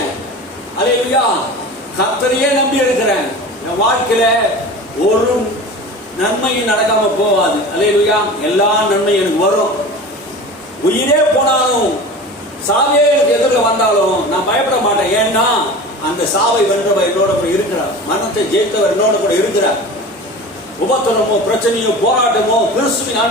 அல்லேலூயா. கர்த்தரையே நம்பி இருக்கிறேன். என் வாழ்க்கையில ஒரு நன்மையும் நடக்காம போவாது. அல்லேலூயா. எல்லா நன்மையும் எனக்கு வரும். உயிரே போனாலும் சாவே எனக்கு எதிரில் வந்தாலும் நான் பயப்பட மாட்டேன். ஏன்னா அந்த சாவை வென்றவர் என்னோட கூட இருக்கிறார். மரணத்தை ஜெயித்தவர் என்னோட கூட இருக்கிறார். உபத்திரமோ பிரச்சனையோ போராட்டமோ கிறிஸ்துவின்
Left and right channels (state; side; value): normal; both; correlation 0.34